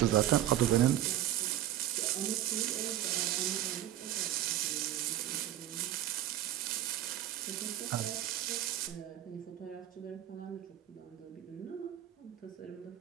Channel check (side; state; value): left; quieter; 12.7 dB